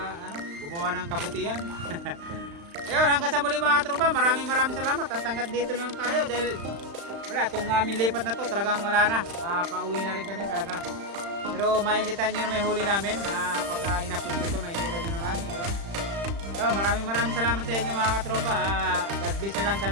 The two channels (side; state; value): left; late; 35 ms